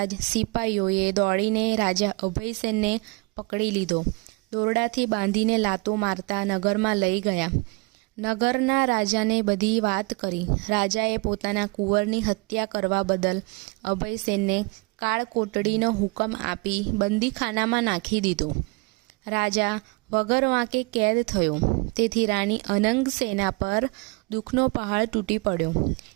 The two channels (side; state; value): left; quieter; 27.2 dB